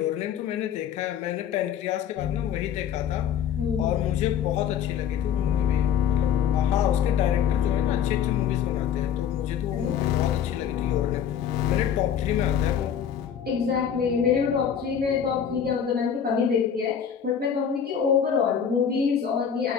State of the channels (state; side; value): quieter; right; 8.4 dB